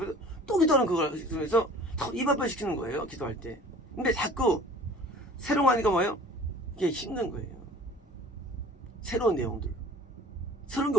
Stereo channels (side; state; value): both; normal; correlation 0.46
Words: 또 기도하는 그걸 해서 입 앞에 시키는 거예요. 기도할 때. 근데 자꾸 새로운 거 하니까 뭐예요? 이게 힘든 거예요. 새로운 내용들. 새로운 게